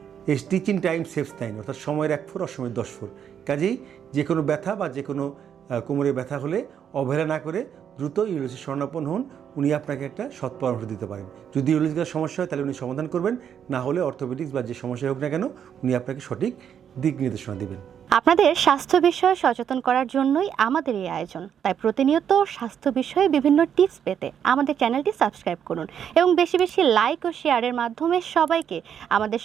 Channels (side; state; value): left; quieter; 8.5 dB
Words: স্টিচিং টাইম সেভস টাইম, অর্থাৎ সময়ের 1 ফুট অসময়ের 10 ফুট। কাজেই যে কোনো ব্যথা বা যে কোনো কোমরে ব্যথা হলে অবহেলা না করে দ্রুত ইউরোলজিস্ট শরণাপন্ন হন। উনি আপনাকে একটা সৎ পরামর্শ দিতে পারেন। যদি ইউরোলজিক্যাল সমস্যা হয় তাহলে উনি সমাধান করবেন, না হলে অর্থোপেডিক্স বা যে সমস্যা হোক না কেন উনি আপনাকে সঠিক দিক নির্দেশনা দেবেন। আপনাদের স্বাস্থ্য বিষয়ে সচেতন করার জন্যই আমাদের এই আয়োজন। তাই প্রতিনিয়ত স্বাস্থ্য বিষয়ে বিভিন্ন টিপস পেতে আমাদের চ্যানেলটি সাবস্ক্রাইব করুন এবং বেশি বেশি লাইক ও শেয়ারের মাধ্যমে সবাইকে আমাদের